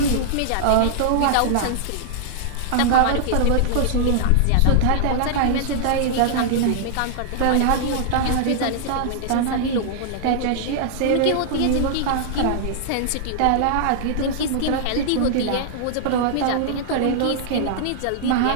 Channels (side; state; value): both; different; correlation -0.01